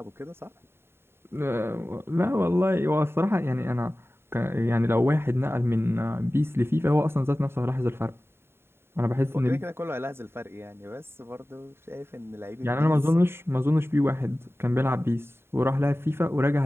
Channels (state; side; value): late; left; 0.11 ms